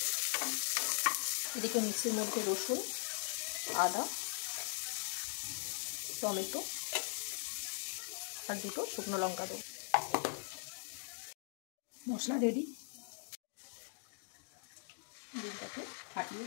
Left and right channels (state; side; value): silent; right; digital silence